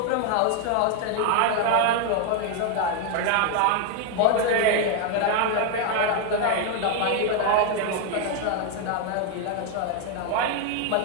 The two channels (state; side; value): different; both; correlation 0.01